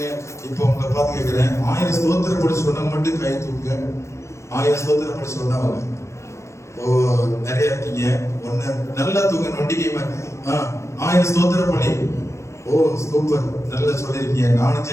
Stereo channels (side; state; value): right; late; 0.14 ms